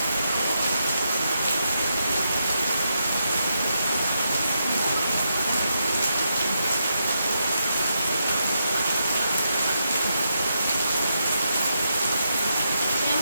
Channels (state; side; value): inverted; both; correlation -0.83